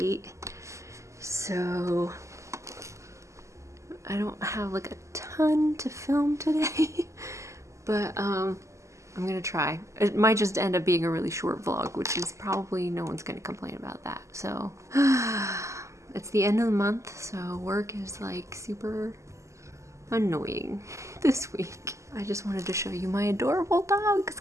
So I don't have like a ton to film today, but I'm gonna try. It might just end up being a really short vlog, which is probably no one's gonna complain about that. So it's the end of the month, so work is like super annoying this week. I just wanted to show you my adorable dogs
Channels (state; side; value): late; left; 0.14 ms